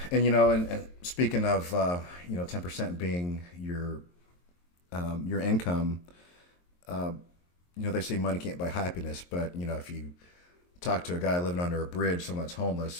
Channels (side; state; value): right; late; 23 ms